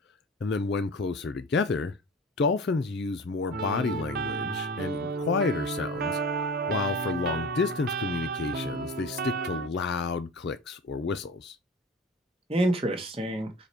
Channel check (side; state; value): both; normal; correlation 0.36